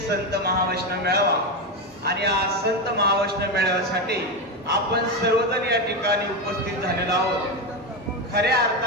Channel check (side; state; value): both; normal; correlation 0.13